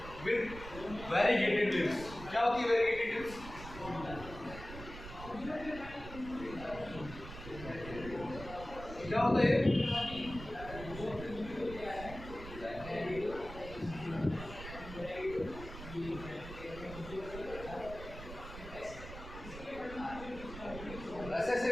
with variegated leaves. क्या होती है वेरीगेटेड लीव्स? क्या होता है? ऐसे ऐसे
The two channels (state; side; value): noise; right; rumble, 12 dB below the sound